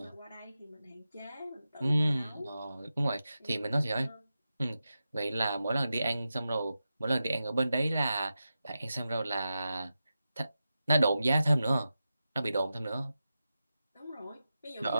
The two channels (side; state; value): both; inverted; correlation -0.91